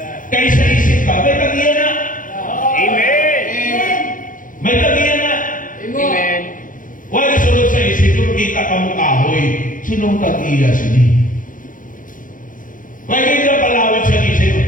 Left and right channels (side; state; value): right; late; 0.39 ms